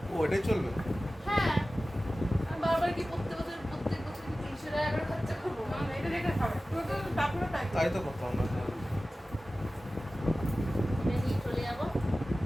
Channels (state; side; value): normal; both; correlation 0.96